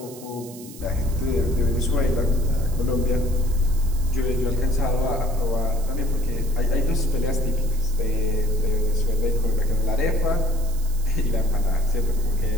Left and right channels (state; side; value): noise; right; hiss, 17 dB below the sound